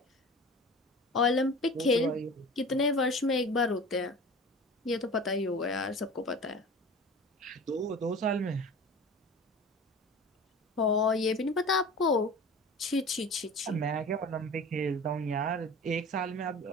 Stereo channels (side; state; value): both; normal; correlation 0.38